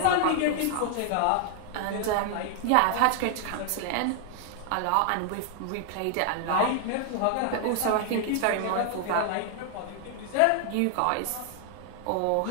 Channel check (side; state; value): both; different; correlation 0.00